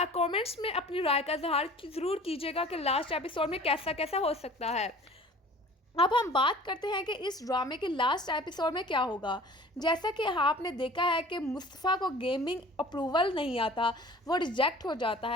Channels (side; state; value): both; normal; correlation 0.46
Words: कमेंट्स में अपनी राय का इजहार ज़रूर कीजिएगा कि लास्ट एपिसोड में कैसा कैसा हो सकता है। अब हम बात करते हैं कि इस ड्रामे के लास्ट एपिसोड में क्या होगा। जैसा कि आपने देखा है कि मुस्तफ़ा को गेमिंग अप्रूवल नहीं आता, वो रिजेक्ट हो जाता